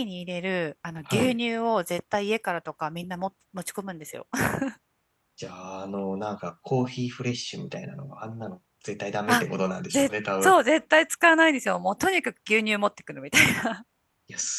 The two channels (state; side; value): identical; both; correlation 1.00